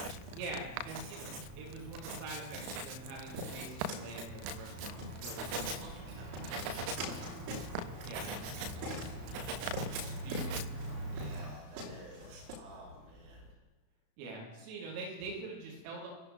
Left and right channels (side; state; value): left; late; 35 ms